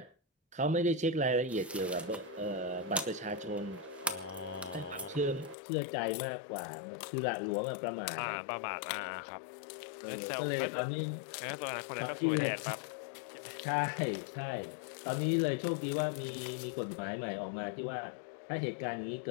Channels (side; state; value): right; drops out; at 5.6 s